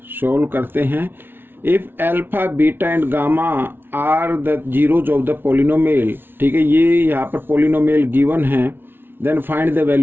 सोल्व करते हैं। If alpha beta and gamma are the zeros of the polynomial. ठीक है, ये यहाँ पर पोलिनोमियल गिवन है। Then find the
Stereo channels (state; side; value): late; left; 0.10 ms